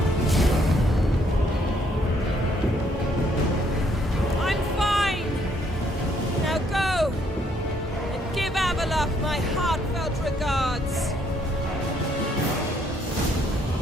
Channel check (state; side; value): normal; both; correlation 0.69